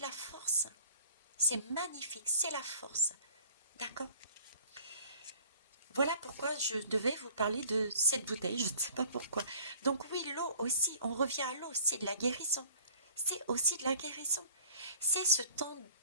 force. C'est magnifique, c'est la force. D'accord? Voilà pourquoi je devais vous parler de cette bouteille, je ne sais pas pourquoi. Donc oui, l'eau aussi, on revient à l'eau, c'est de la guérison. C'est aussi de la guérison. C'est ce temps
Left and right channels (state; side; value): inverted; both; correlation -0.52